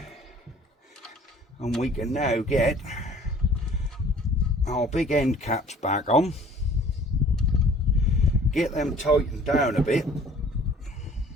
and we can now get our big end caps back on, get them tightened down a bit.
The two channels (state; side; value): normal; both; correlation 0.52